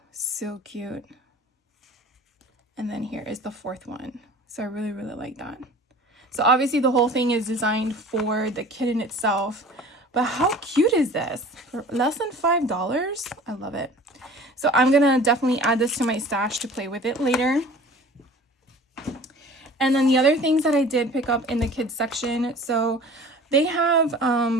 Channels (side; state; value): both; normal; correlation 0.44